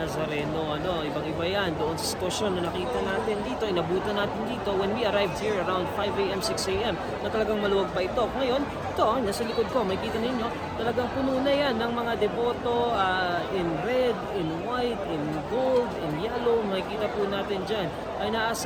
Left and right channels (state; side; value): identical; both; correlation 1.00